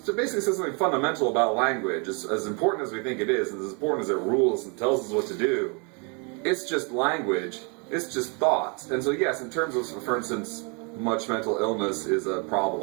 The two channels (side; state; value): left; quieter; 34.3 dB